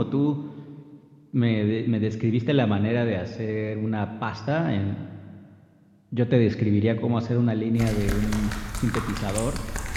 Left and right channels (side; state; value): both; identical; correlation 1.00